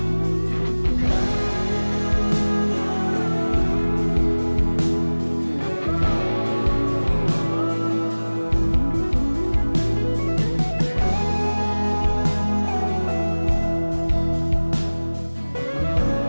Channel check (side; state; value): both; inverted; correlation -1.00